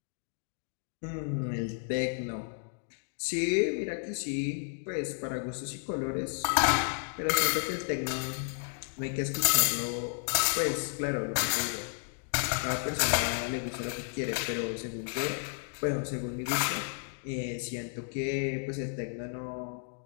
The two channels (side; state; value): right; silent; 56 dB below the other